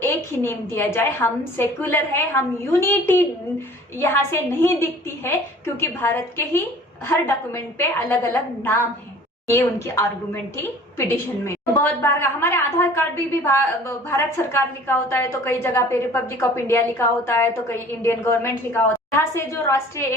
ही नेम दिया जाए। हम सेक्युलर है, हम यूनिटी यहाँ से नहीं दिखती है क्योंकि भारत के ही हर डॉक्यूमेंट पे अलग अलग नाम है। ये उनकी आर्गुमेंट थी पिटीशन में। बहुत बार हमारे आधार कार्ड भी भारत सरकार लिखा होता है, तो कई जगह पे रिपब्लिक ऑफ इंडिया लिखा होता है, तो कई इंडियन गवर्नमेंट लिखा होता है। यहाँ से जो राष्ट्रीय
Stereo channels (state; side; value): normal; both; correlation 0.48